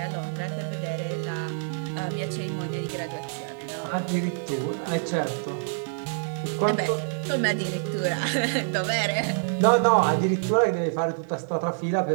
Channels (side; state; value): left; silent; digital silence